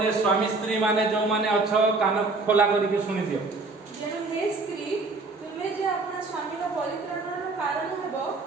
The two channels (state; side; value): quieter; left; 3.6 dB